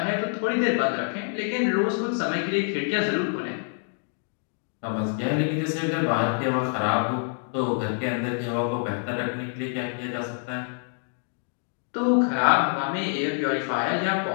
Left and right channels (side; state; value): right; silent; 61 dB below the other